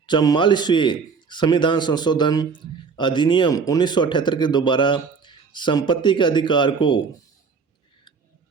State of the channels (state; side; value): quieter; left; 5.3 dB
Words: 44वें संविधान संशोधन अधिनियम 1978 के दोबारा संपत्ति के अधिकार को